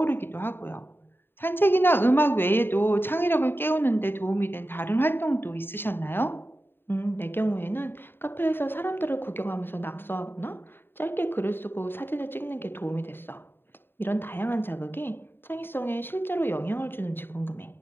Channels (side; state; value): right; late; 0.10 ms